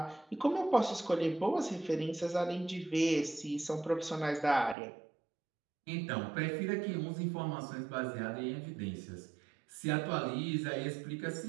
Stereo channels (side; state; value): left; drops out; at 4.8 s